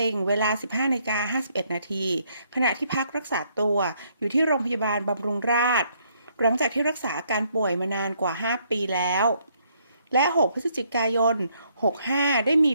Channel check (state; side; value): inverted; both; correlation -0.70